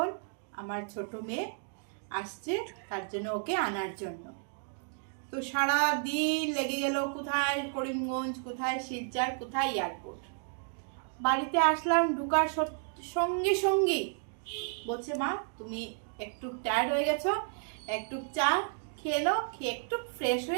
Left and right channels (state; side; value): silent; left; 56 dB below the other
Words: আমার ছোট মেয়ে আসছে, তার জন্য ওকে আনার জন্য। তো সারা দিন লেগে গেল, কোথায় করিমগঞ্জ, কোথায় শিলচর, কোথায় এয়ারপোর্ট। বাড়িতে আসলাম, ঢুকার সঙ্গে সঙ্গে বলছে মা তুমি একটু টায়ার্ড হয়ে গেছো, একটু চা খেয়ে নাও, খেয়ে একটু ফ্রেশ